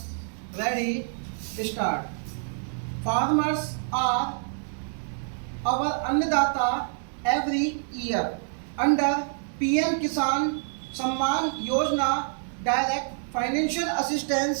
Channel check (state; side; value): silent; left; digital silence